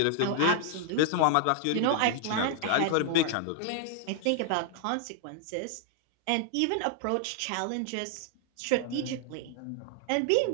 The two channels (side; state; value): both; different; correlation 0.00